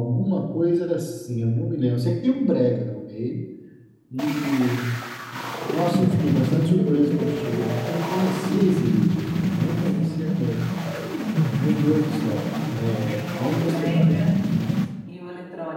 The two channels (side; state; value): both; identical; correlation 1.00